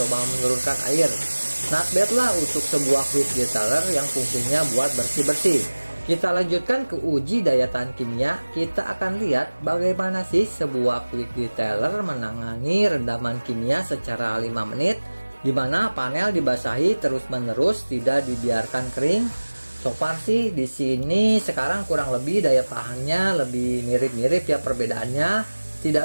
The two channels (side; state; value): both; inverted; correlation -1.00